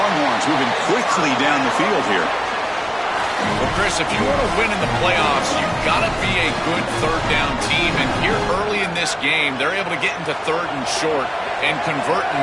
moving quickly down the field here. Well, Chris, if you want to win in the playoffs, you've got to be a good third down team. And here early in this game, they're able to get into 3rd and short and convert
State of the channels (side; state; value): both; identical; correlation 1.00